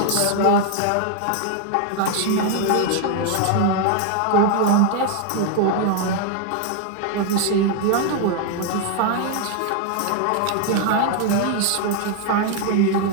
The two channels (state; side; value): different; both; correlation 0.00